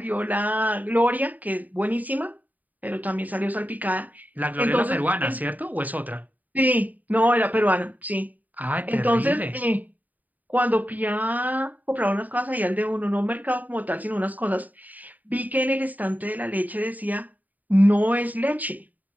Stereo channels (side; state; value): left; late; 0.081 ms